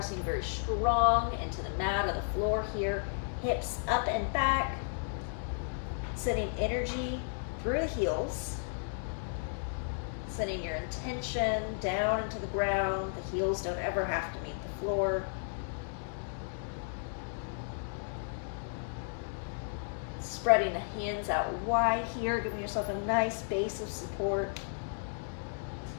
very strong into the mat or the floor here, hips up and back, sending energy through the heels, sending your intention down into the ground. The heels don't ever have to meet the floor. Spreading the hands out wide here, giving yourself a nice base of support.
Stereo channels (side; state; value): right; silent; digital silence